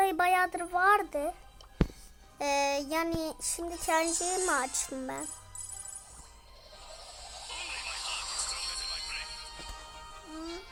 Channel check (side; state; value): both; identical; correlation 1.00